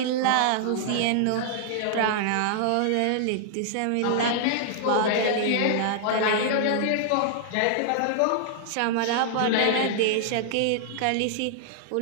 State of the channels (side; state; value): both; different; correlation -0.01